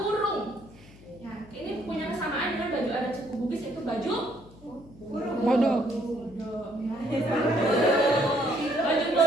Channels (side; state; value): left; noise; hum, 22 dB below the sound